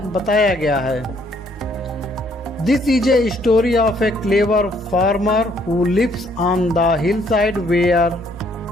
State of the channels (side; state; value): both; normal; correlation 0.66